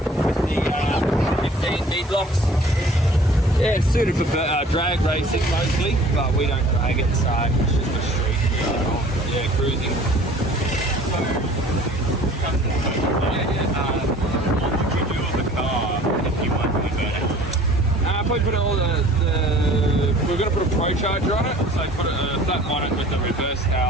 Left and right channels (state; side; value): normal; both; correlation 0.49